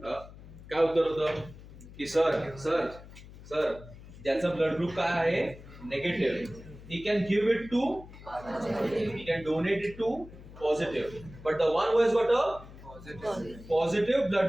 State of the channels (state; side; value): noise; left; hum, 17 dB below the sound